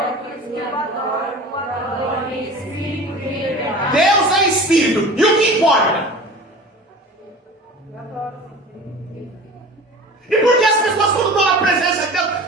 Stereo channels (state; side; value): normal; both; correlation 0.38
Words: aqueles que adoram, o adoram em Espírito e em verdade. Deus é Espírito. E o que importa? E por que as pessoas, quando estão na presença de